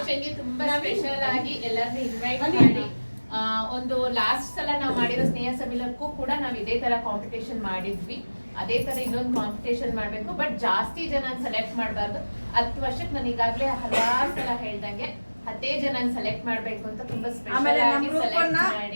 ತುಂಬಾ ಸ್ಪೆಷಲ್ ಆಗಿ ಎಲ್ಲರನ್ನೂ ಇನ್ವೈಟ್ ಮಾಡಿ ಒಂದು ಲಾಸ್ಟ್ ಸಲ ನಾವು ಮಾಡಿರೋ ಸ್ನೇಹ ಸಮ್ಮಿಲನಕ್ಕೂ ಕೂಡ ನಾವು ಇದೇ ತರ ಕಾಂಪಿಟೇಷನ್ ಮಾಡಿದ್ವಿ. ಅದೇ ತರ ಇನ್ನೊಂದು ಕಾಂಪಿಟೇಷನ್ ಮಾಡ್ಬೇಕು, ಬಟ್ ಜಾಸ್ತಿ ಜನ ಸೆಲೆಕ್ಟ್ ಮಾಡಬಾರ್ದು. 10 ವರ್ಷಕ್ಕೆ ನಾನು ಈಗಾಗಲೇ ಹಲವಾರು ಸಲ ಹೇಳ್ದಂಗೆ 10 ಜನ ಸೆಲೆಕ್ಟ್ ಮಾಡ್ಬೇಕು ಅಂತ ತುಂಬಾ ಸ್ಪೆಷಲ್ ಆಗಿ ಸೆಲೆಕ್ಟ್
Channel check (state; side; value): inverted; both; correlation -1.00